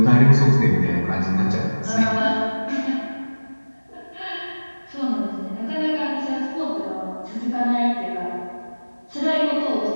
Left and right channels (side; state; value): both; inverted; correlation -1.00